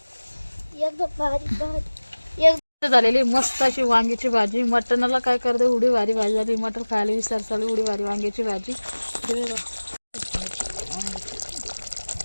एकदम भारी भारी एकदम झालेली मस्त अशी वांग्याची भाजी मटणाला काय करते उडी भारी भाजी झाली मटण खायला विसर चालू उडी भारी वांग्याची भाजी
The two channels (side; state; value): both; inverted; correlation -1.00